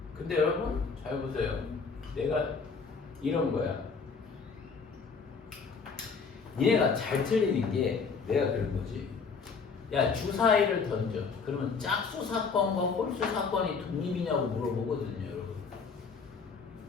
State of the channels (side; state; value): right; quieter; 5.2 dB